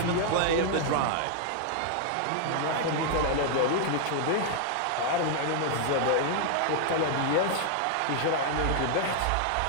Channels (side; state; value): both; different; correlation 0.00